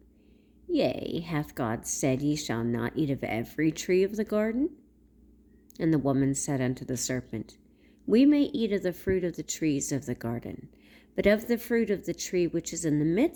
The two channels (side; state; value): both; identical; correlation 1.00